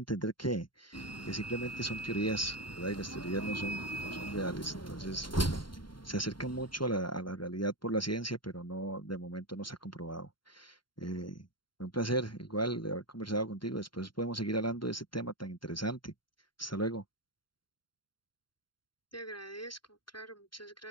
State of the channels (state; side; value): late; right; 0.72 ms